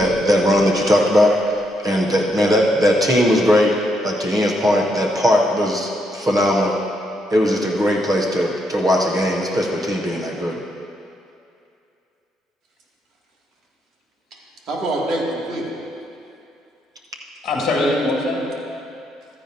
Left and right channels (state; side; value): normal; both; correlation 0.78